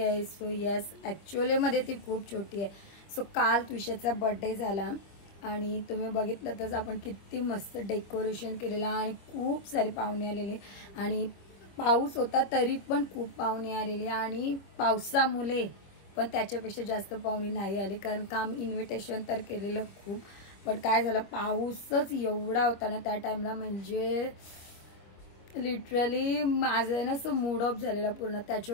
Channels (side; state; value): right; late; 25 ms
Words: सो यस, ॲक्च्युअलीमध्ये ती खूप छोटी आहे. सो काल विशाचा बर्थडे झाला आणि तुम्ही बघितलं तर आपण किती मस्त डेकोरेशन केलेलं आणि खूप सारे पाहुणे आलेले आणि पाऊस होता तरी पण खूप पाहुणे आलेले आणि पावसामुळे पण त्याच्यापेक्षा जास्त पाहुणे नाही आले कारण का आम्ही इन्व्हिटेशन तर केलेलं खूप. पण काय झालं, पाऊसच एवढा होता ना त्या टाइमला, म्हणजे लिटरली माझं ना असं मूड ऑफ झालेला पूर्ण.